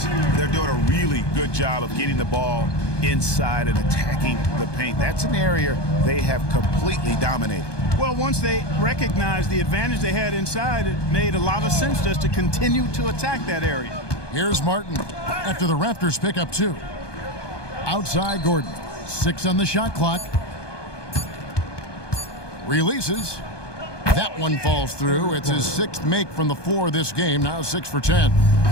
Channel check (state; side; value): late; right; 1.2 ms